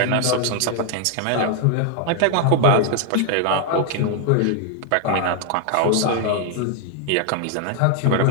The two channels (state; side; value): different; both; correlation 0.00